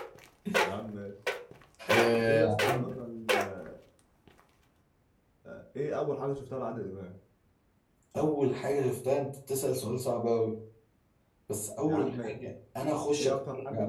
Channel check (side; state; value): both; identical; correlation 1.00